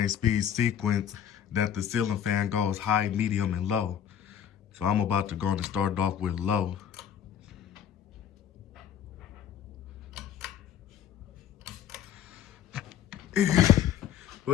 speed sequence that the ceiling fan goes high, medium, and low. So I'm about to go and start off with low.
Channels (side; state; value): right; quieter; 9.4 dB